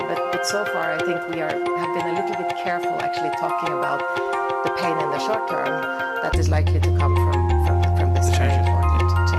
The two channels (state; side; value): identical; both; correlation 1.00